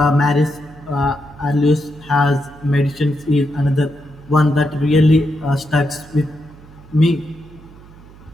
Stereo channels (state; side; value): noise; right; hum, 22 dB below the sound